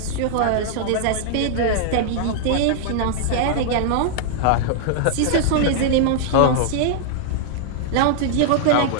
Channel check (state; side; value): different; both; correlation -0.01